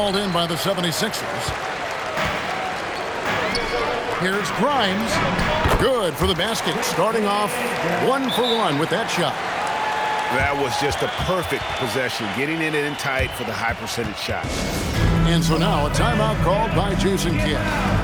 in by the 76ers. Here's Grimes. Good for the basket. Starting off 1 for 1 with that shot. That was just a perfect possession, getting it in tight for the high percentage shot. And so now a timeout called by Jason Kidd.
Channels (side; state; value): both; identical; correlation 1.00